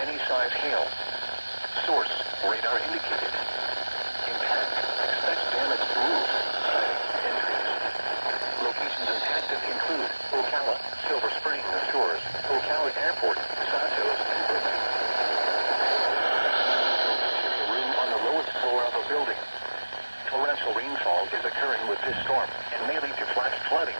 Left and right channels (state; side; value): inverted; both; correlation -1.00